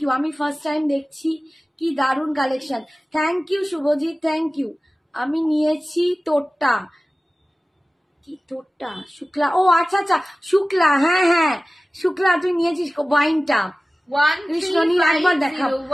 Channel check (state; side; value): normal; both; correlation 0.97